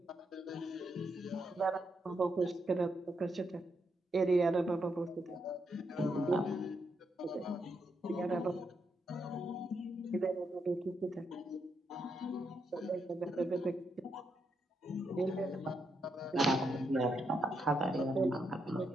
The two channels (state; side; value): normal; both; correlation 0.80